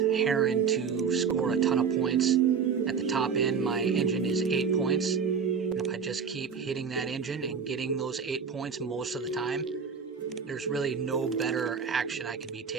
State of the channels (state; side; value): quieter; left; 6.2 dB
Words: to score a ton of points. At the top end, my engine is 8 points. And if I just keep hitting that engine and getting those 8 points most of the time, there's really no better action I could be